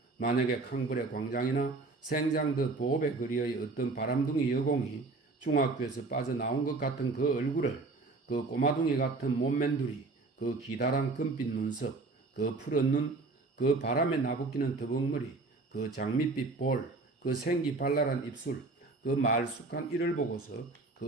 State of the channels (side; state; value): left; quieter; 3.6 dB